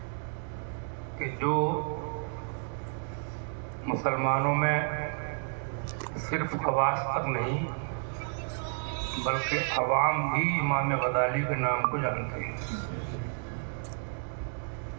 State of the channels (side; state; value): left; silent; 57 dB below the other